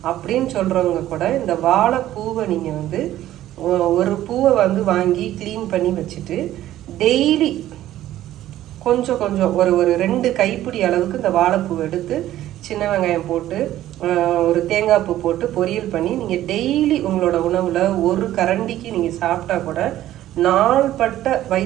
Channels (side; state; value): left; quieter; 13.5 dB